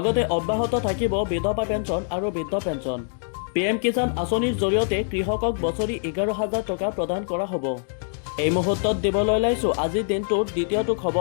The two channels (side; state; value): right; silent; digital silence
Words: অব্যাহত থাকিব বিধৱা পেঞ্চন আৰু বৃদ্ধ পেঞ্চন। PM কিষাণ আঁচনিৰ জৰিয়তে কৃষকক বছৰি 11,000 টকা প্ৰদান কৰা হ'ব। এই মুহূৰ্তত দিবলৈ ওলাইছোঁ আজিৰ দিনটোৰ দ্বিতীয়টো